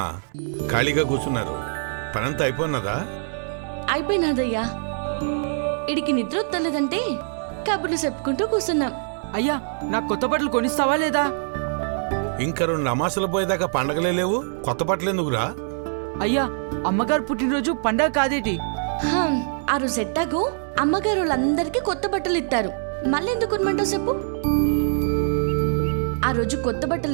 ఖాళీగా కూర్చున్నారు? పనంతా అయిపోయినదా? అయిపోయినాదయ్యా. ఇడికి నిద్ర వస్తలేదంటే కబుర్లు చెప్పుకుంటూ కూర్చున్నాం. అయ్యా, నాకు కొత్త బట్టలు కొనిస్తావా లేదా? ఇంకా 2 అమాసలు పోయేదాకా పండగలే లేవు, కొత్త బట్టలు ఎందుకురా? అయ్యా, అమ్మగారు పుట్టినరోజు పండగ కాదేటి? ఆ రోజు ఎట్టాగో అమ్మగారు వాళ్ళందరికీ కొత్త బట్టలు ఇస్తారు. మళ్ళీ ఎందుకు కొనమంటావు చెప్పు? ఆ రోజు కొత్త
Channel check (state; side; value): silent; left; 62 dB below the other